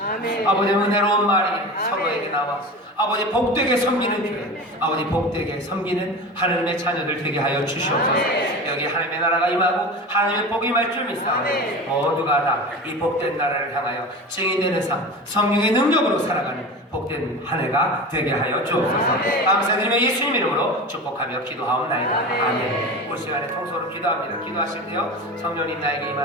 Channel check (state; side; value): normal; both; correlation 0.30